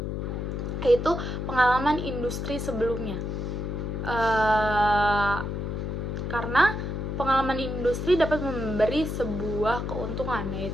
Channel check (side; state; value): left; noise; hum, 3 dB below the sound